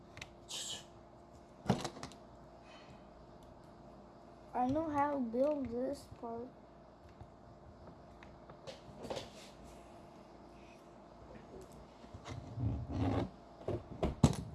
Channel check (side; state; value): both; identical; correlation 1.00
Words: I know how to build this part.